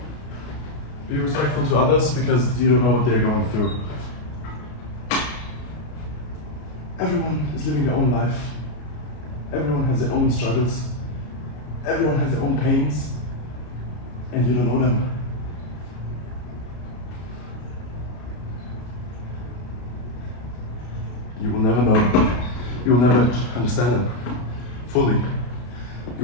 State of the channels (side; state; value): right; late; 33 ms